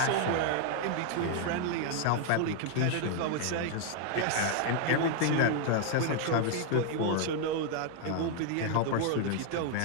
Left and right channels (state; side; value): different; both; correlation 0.00